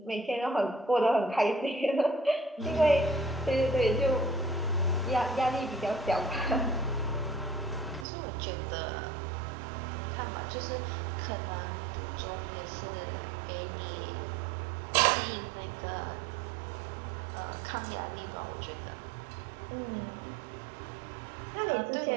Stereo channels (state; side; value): drops out; left; at 8.1 s